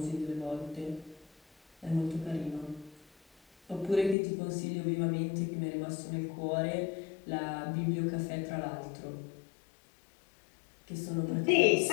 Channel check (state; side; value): drops out; right; at 4.2 s